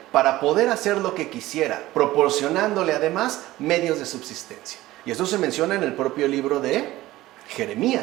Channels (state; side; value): quieter; left; 16.9 dB